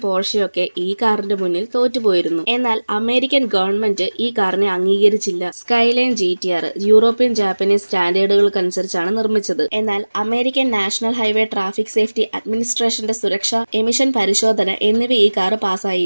പോർഷയും ഒക്കെ ഈ കാറിന്റെ മുന്നിൽ തോറ്റുപോയിരുന്നു. എന്നാൽ അമേരിക്കൻ ഗവൺമെന്റ് ഈ കാറിനെ അംഗീകരിച്ചില്ല. സ്കൈലൈൻ GTR യൂറോപ്യൻ ജാപ്പനീസ് സ്റ്റാൻഡേർഡുകൾക്കനുസരിച്ചാണ് നിർമ്മിച്ചത്. എന്നാൽ American national highway traffic safety അഡ്മിനിസ്ട്രേഷന്റെ സുരക്ഷ, എമിഷൻ പരിശോധന എന്നിവ ഈ കാർ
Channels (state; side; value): inverted; both; correlation -1.00